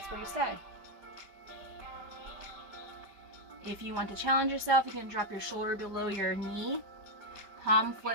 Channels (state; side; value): late; left; 5.0 ms